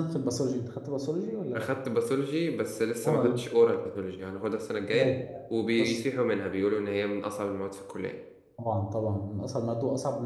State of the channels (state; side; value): identical; both; correlation 1.00